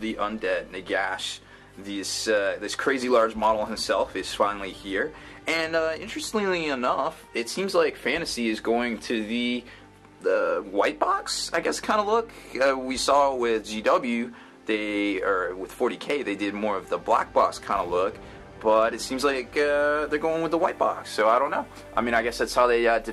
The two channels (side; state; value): both; identical; correlation 1.00